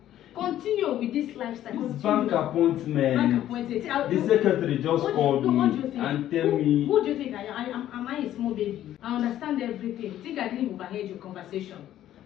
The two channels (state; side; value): quieter; right; 12.3 dB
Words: Continue with this lifestyle. This bank appointment. The secretary just called me and tell me... Who do you think I am? Am I a small baby? I understand everything. Think I didn't overheard your conversation.